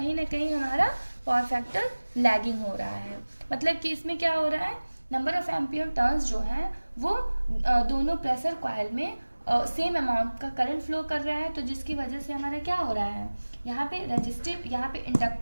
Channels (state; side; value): inverted; both; correlation -1.00